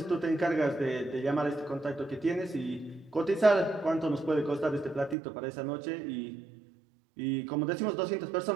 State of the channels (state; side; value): drops out; left; at 5.2 s